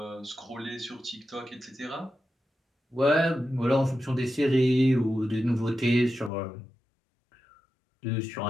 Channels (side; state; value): right; drops out; at 6.3 s